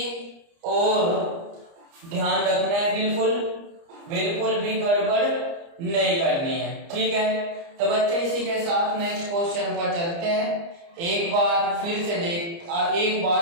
और ध्यान रखना है, बिल्कुल भी गड़बड़ नहीं करनी है, ठीक है। तो बच्चे इसी के साथ नेक्स्ट क्वेश्चन पर चलते हैं। एक बार फिर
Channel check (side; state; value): left; late; 30 ms